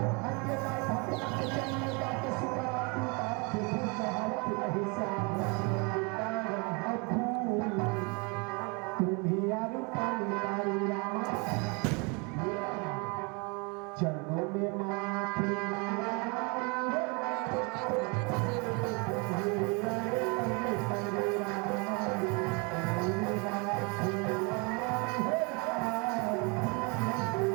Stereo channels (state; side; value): quieter; left; 31.5 dB